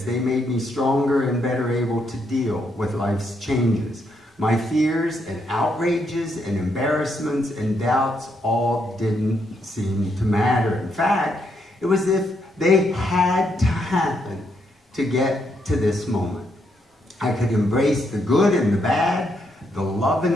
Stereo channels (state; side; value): normal; both; correlation 0.77